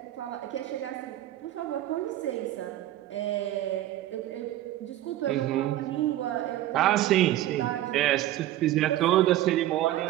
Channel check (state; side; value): quieter; left; 14.1 dB